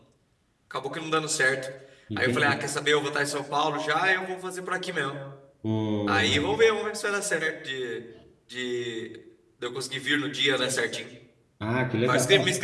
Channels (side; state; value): both; identical; correlation 1.00